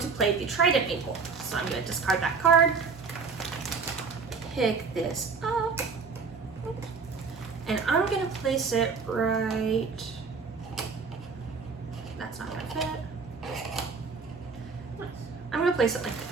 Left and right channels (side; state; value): left; quieter; 5.0 dB